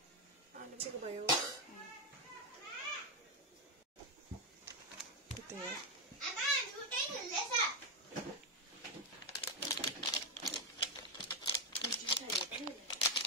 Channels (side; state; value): both; normal; correlation 0.05